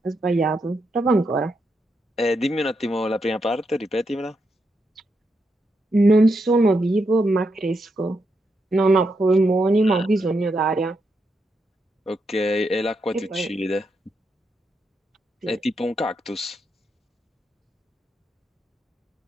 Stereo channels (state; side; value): normal; both; correlation 0.82